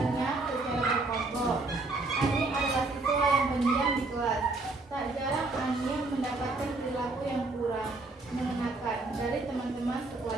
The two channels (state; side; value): quieter; left; 3.2 dB